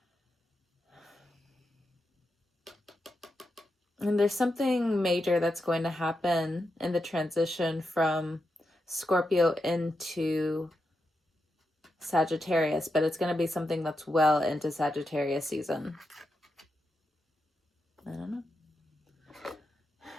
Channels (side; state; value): both; normal; correlation 0.86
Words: And there's something major that's going to happen in the transition from Scorpio into Sagittarius, but it's going to be something that's well into Sagittarius season. I don't know.